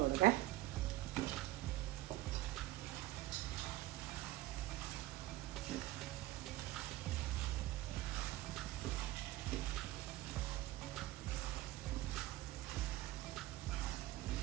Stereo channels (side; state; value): left; quieter; 16.7 dB